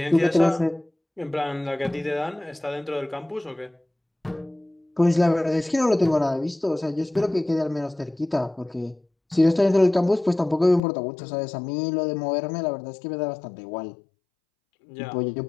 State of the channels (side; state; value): right; drops out; at 10.8 s